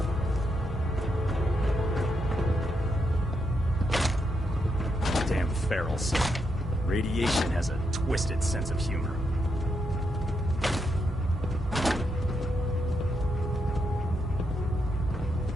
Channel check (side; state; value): both; normal; correlation 0.81